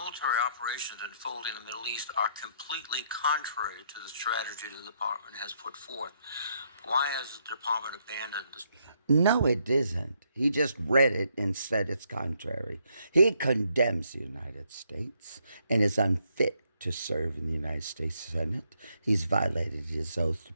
operations unfolding in the Middle East are completely contrary to the strategy the department has put forth. Why has the department abandoned this? No, it isn't. He just read it and said it's contrary. He condemns the United States and is unfit to serve in the United States Senate. He's violated his oath to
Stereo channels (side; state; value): both; inverted; correlation -0.74